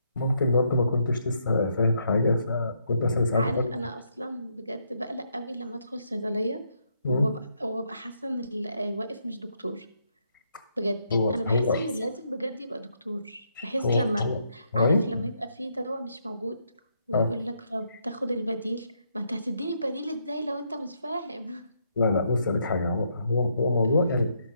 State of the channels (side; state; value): both; inverted; correlation -0.76